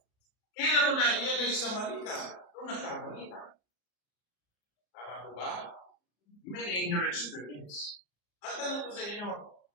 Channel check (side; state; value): right; late; 34 ms